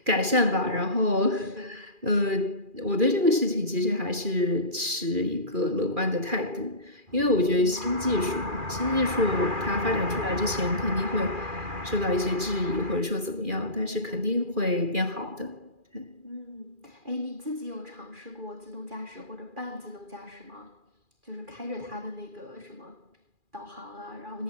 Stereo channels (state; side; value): late; left; 2.4 ms